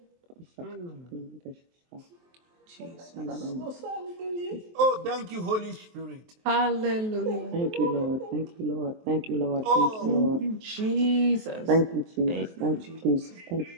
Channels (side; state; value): left; late; 23 ms